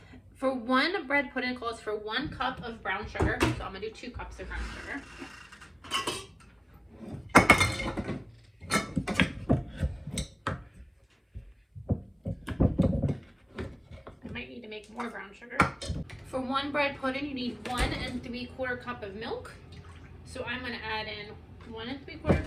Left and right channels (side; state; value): both; identical; correlation 1.00